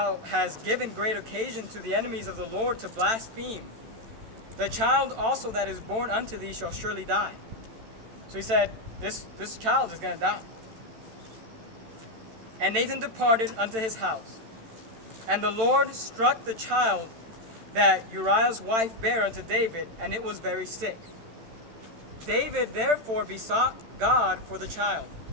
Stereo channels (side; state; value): left; late; 13 ms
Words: hast given great occasion to the enemies of the Lord to blaspheme. The child also that is born unto thee shall surely die. So he said, this child is going to die. And Nathan departed unto his house. And the Lord struck the child that Uriah's wife bare unto David, and it was very sick. David therefore besought God for the child.